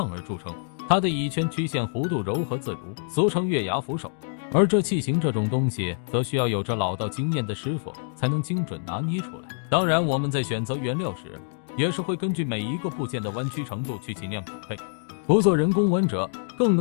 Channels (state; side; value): silent; right; digital silence